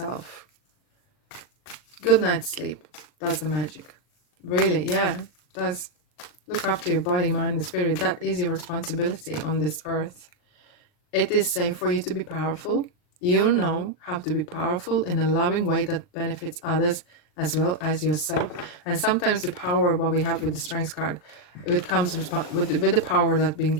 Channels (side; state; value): right; late; 39 ms